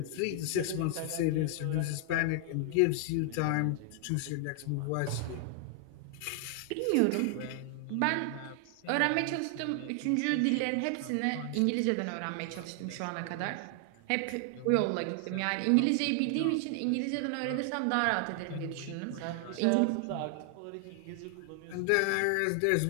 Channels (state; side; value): different; both; correlation 0.00